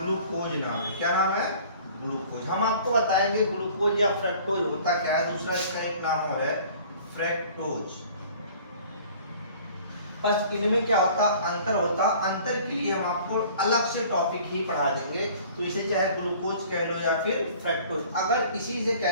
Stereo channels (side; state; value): both; inverted; correlation -0.49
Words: नाम है। क्या नाम है, ग्लूकोज। हम आपको बताएंगे ग्लूकोज या फ्रक्टोज होता क्या है, दूसरा इसका एक नाम और है फ्रक्टोज। बस इनमें क्या होता, अंतर होता। अंतर के लिए हम आपको अलग से टॉपिक ही पढ़ा देंगे। तो इसे चाहे ग्लूकोज कह लो या फिर फ्रक्टोज। अगर इसी से